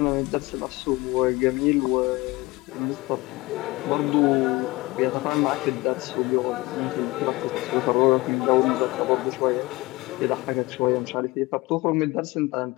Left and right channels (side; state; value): right; quieter; 21.7 dB